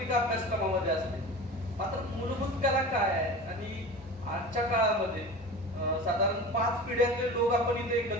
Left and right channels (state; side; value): normal; both; correlation 0.34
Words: अभ्यासक्रमामध्ये असते. मात्र मूलभूत कला काय आहे आणि आजच्या काळामध्ये साधारण 5 पिढ्यातले लोक आपण इथे